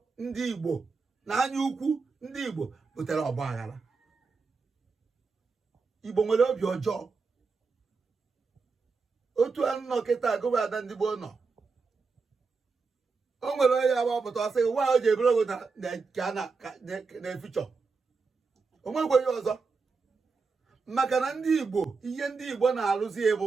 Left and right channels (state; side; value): quieter; left; 4.6 dB